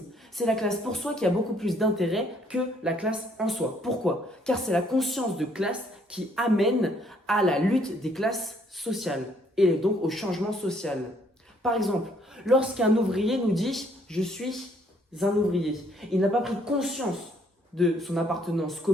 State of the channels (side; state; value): both; normal; correlation 0.65